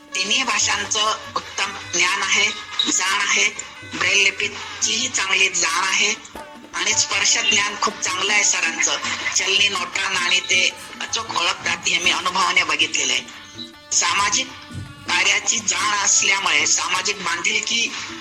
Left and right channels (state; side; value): identical; both; correlation 1.00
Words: तिन्ही भाषांचं उत्तम ज्ञान आहे, जाण आहे, ब्रेल लिपीचीही चांगली जाण आहे आणि स्पर्श ज्ञान खूप चांगलं आहे सरांचं. चलनी नोटा नाणी ते अचूक ओळखतात, हे मी अनुभवाने बघितलेलं आहे. सामाजिक कार्याची जाण असल्यामुळे, सामाजिक